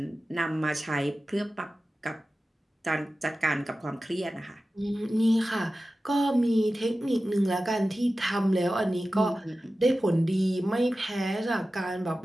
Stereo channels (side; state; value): both; normal; correlation 0.95